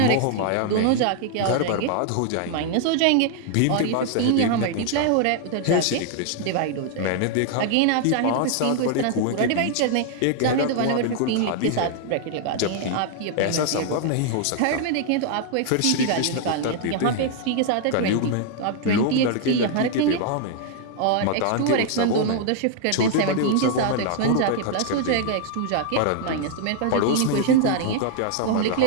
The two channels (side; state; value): both; different; correlation 0.00